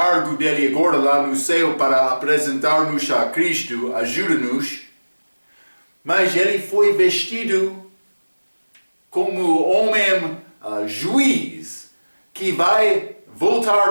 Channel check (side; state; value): both; inverted; correlation -1.00